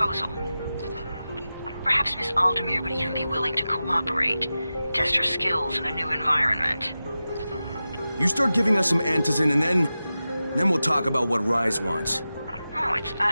Perhaps Miss Aldemir would even be willing to cooperate, test her skills in a new environment. You start giving us some antizin and then we'll talk about what Rise wants. Oh, it's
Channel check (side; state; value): both; inverted; correlation -0.94